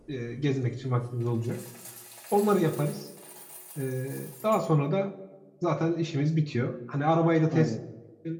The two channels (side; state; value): both; identical; correlation 1.00